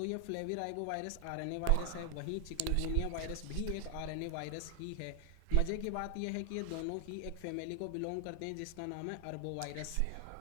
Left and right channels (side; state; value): both; different; correlation 0.00